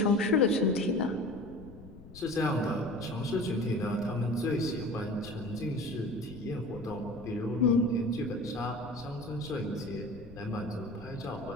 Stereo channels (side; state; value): left; noise; rumble, 17 dB below the sound